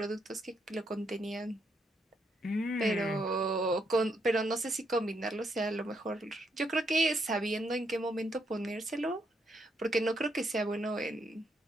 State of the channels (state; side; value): normal; both; correlation 0.77